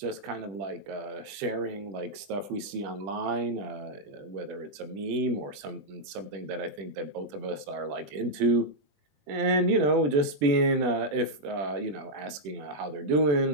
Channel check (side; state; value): left; late; 20 ms